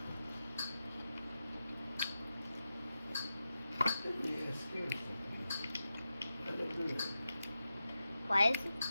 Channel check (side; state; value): both; inverted; correlation -0.90